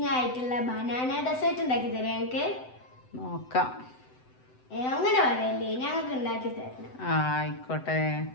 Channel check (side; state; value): right; late; 7.9 ms